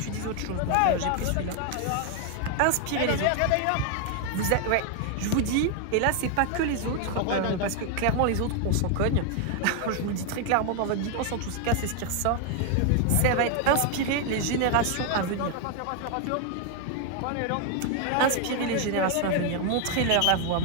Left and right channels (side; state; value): both; different; correlation 0.00